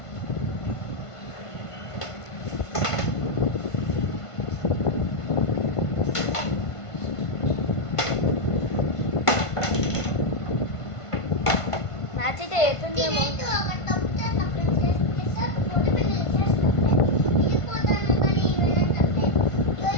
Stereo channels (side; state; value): right; late; 1.5 ms